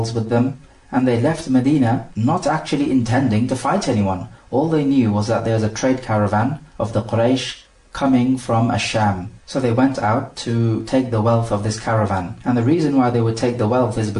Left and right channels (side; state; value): both; identical; correlation 1.00